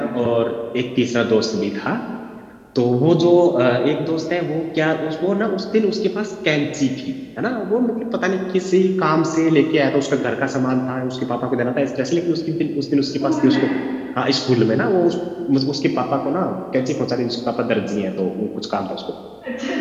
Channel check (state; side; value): identical; both; correlation 1.00